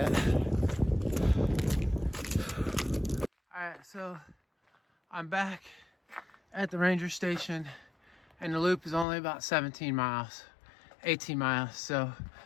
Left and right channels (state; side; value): drops out; right; at 9.1 s